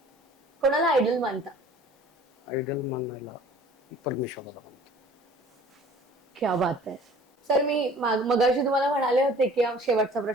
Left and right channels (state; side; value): normal; both; correlation 0.49